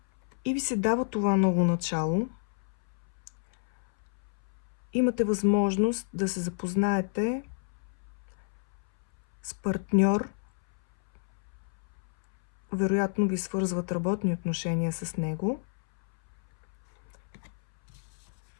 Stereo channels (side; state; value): right; silent; 58 dB below the other